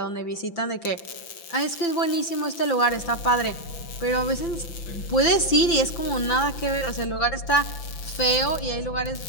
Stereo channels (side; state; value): right; late; 5.9 ms